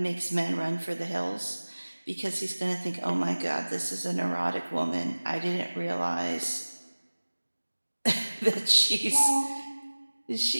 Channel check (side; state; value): both; inverted; correlation -1.00